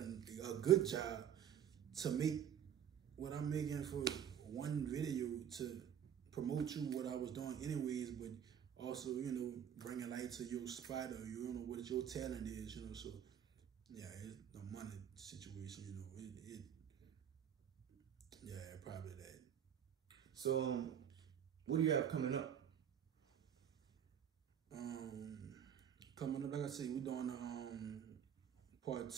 good job to make what I'm making for one video to promote you what I was doing anyways, but also, you know, bringing light to your spot, or you know what your talent is, you know. So yeah, it's the money situation, you know. Yeah, probably that. So what do you have coming up? Coming up, like I said, we're doing part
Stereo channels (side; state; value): left; quieter; 9.1 dB